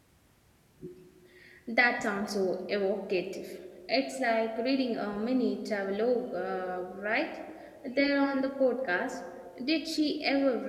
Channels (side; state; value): both; identical; correlation 1.00